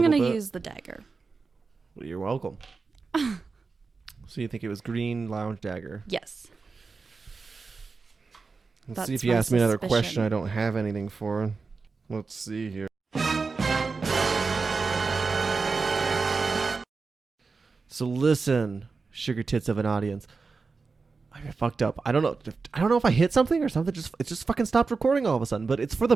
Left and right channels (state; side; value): quieter; left; 4.5 dB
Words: going little to bit. use the dagger. Well, you're welcome. So you think it was green lounge dagger? Yes. Let's That's see if you my ask me another question suspicion. I don't have anything for. Let's see here. So listen, sugar tits of an audience. I fucked up. I don't know if I hit something or something. It just fucking stopped recording all of a sudden. But it's for